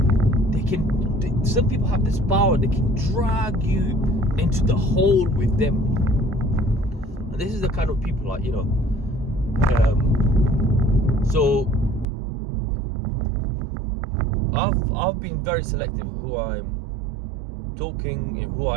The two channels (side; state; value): left; drops out; at 12.1 s